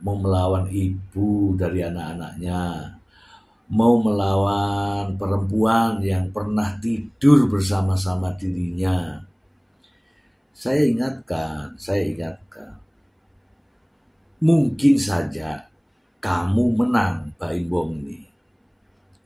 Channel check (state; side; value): identical; both; correlation 1.00